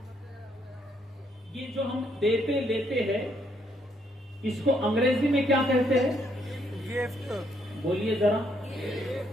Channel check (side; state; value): both; normal; correlation 0.71